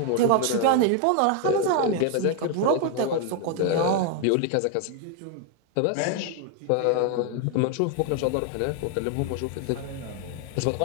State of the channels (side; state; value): both; different; correlation 0.00